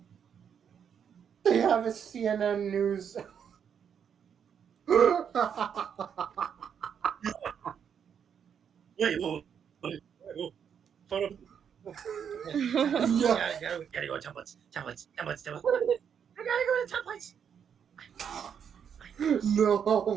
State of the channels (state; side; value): quieter; left; 7.8 dB